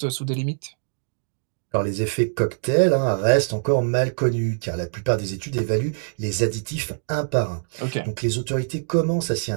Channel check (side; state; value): left; silent; digital silence